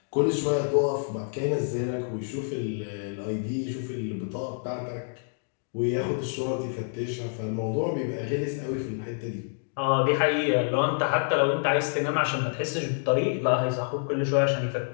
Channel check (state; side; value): silent; right; digital silence